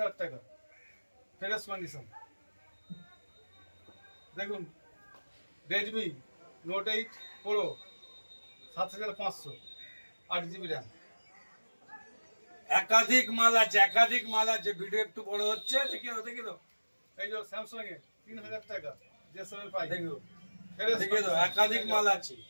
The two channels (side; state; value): both; inverted; correlation -1.00